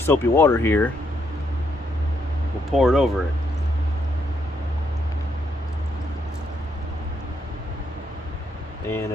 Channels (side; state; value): both; normal; correlation 0.76